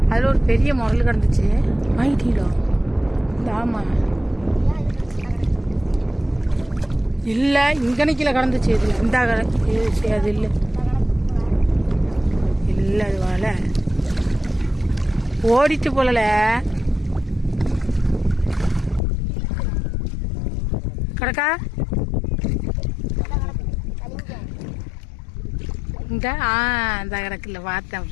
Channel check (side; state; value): right; drops out; at 19.0 s